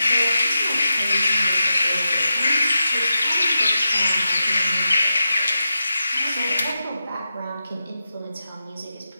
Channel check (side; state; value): both; inverted; correlation -0.88